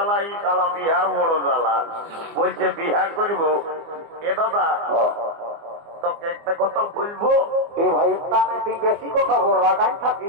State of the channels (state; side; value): late; left; 24 ms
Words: এই কালা বিহার বড় জ্বালা। বলছে বিহার করিব। এ দাদা, তোকে একটা কথা বলবো। এ ভাই, তুই বেশি কথা বল, রাগাই